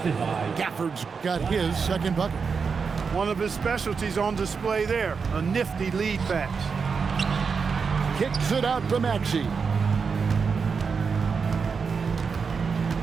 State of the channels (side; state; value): left; quieter; 5.5 dB